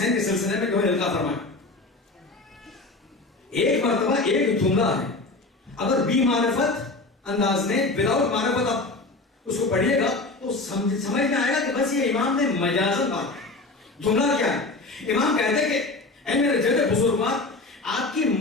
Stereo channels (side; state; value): right; quieter; 3.3 dB